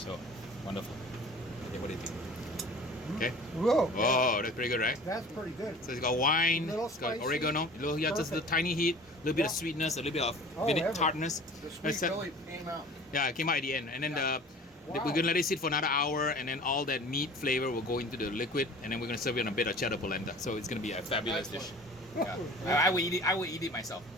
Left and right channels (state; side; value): normal; both; correlation 0.43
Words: wonderful. Okay, what do you think? Okay. Whoa. Oh, that's pretty good, right? That's pretty good. So it's got wine, it's got oregano, just a tiny heat, a little bit of sweetness, a little bit of tartness. The sweet really came out. Yeah, it came out at the end. And then we're gonna let it sit for another hour, and then all that meat flavor will go into the liquid, and then we're gonna serve it on a bit of cheddar polenta. So it's gonna be a fabulous dish. Yeah. I will eat it myself.